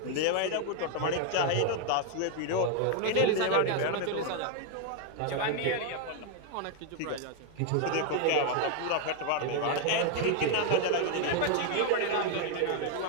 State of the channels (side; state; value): both; different; correlation 0.01